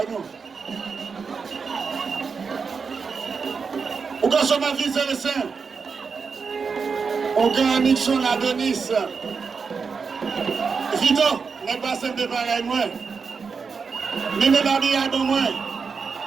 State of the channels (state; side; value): quieter; left; 5.4 dB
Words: nous. On gagne ma vie, c'est le saint. On gagne Nixon, Adonis. Vito, n'est pas simple de pareil, moi. Mene la vie à moi.